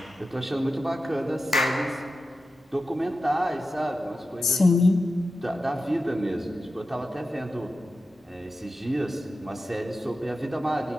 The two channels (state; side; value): normal; both; correlation 0.91